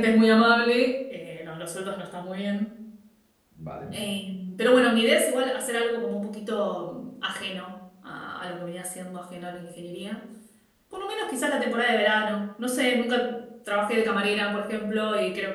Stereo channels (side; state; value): both; identical; correlation 1.00